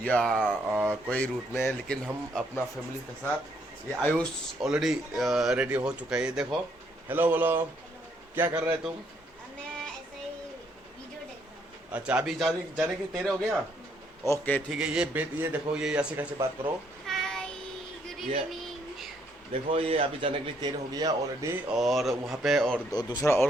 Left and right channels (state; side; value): normal; both; correlation 0.70